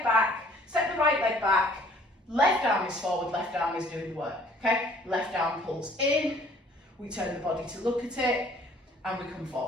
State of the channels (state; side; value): normal; both; correlation 0.56